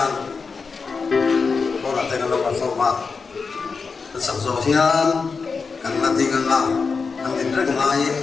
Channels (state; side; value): quieter; right; 4.9 dB